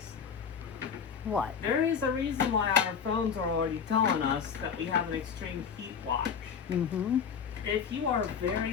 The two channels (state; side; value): quieter; right; 6.9 dB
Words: What? there is a reason why our phones are already telling us that we have an extreme heat watch. Mm-hmm. If you are